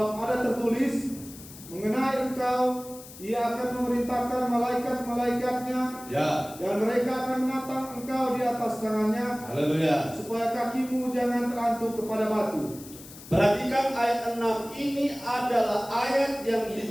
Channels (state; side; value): noise; left; hiss, 17 dB below the sound